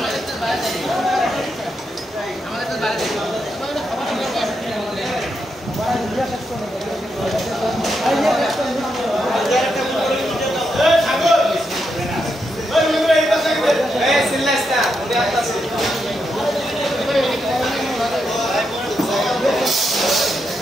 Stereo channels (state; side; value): normal; both; correlation 0.83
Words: আমাদের তো বাইরে